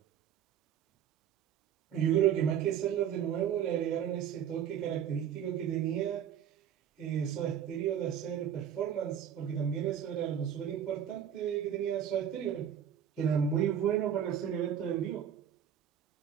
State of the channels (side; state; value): left; quieter; 9.1 dB